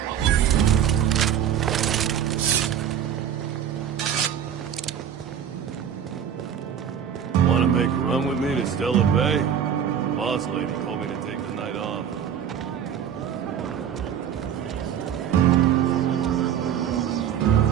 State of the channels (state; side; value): quieter; left; 8.9 dB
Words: Want to make a run with me to Stella Bay? Boss lady told me to take the night off.